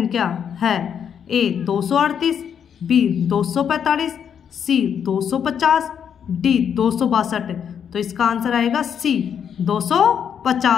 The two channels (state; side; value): quieter; right; 8.0 dB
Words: है? ए 238, बी 245, सी 250, डी 262। तो इसका आंसर आएगा सी